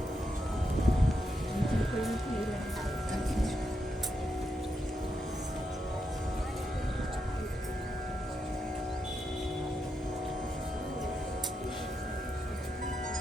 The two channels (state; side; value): normal; both; correlation 0.83